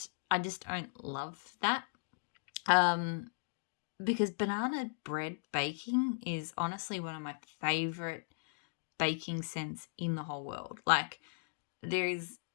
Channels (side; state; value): right; silent; digital silence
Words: I just don't love that. Because banana bread baking is honestly one of my favorite baking scents in the whole world. Like, there is